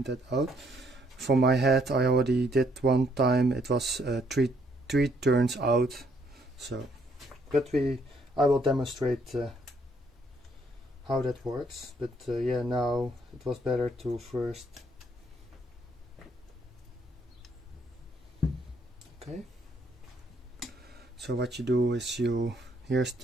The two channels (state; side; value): normal; both; correlation 0.69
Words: that out. For my head, I already did one time. It was three turns out. So, but I will demonstrate how that works. But yeah, now it was better to first. Okay. So what you do is here's